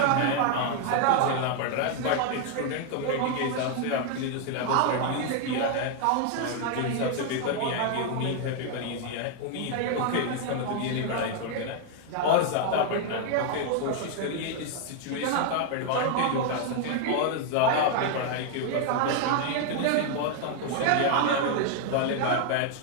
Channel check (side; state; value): both; different; correlation 0.00